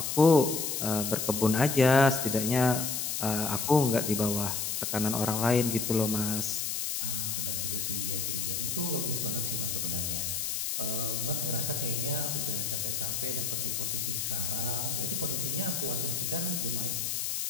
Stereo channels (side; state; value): left; noise; hiss, 1 dB below the sound